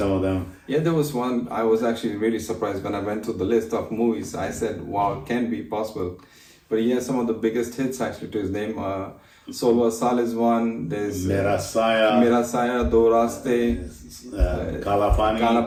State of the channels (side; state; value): both; identical; correlation 1.00